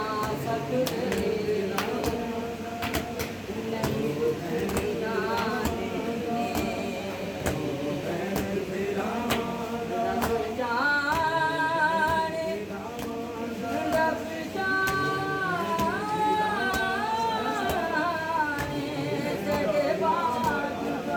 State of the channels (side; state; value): both; identical; correlation 1.00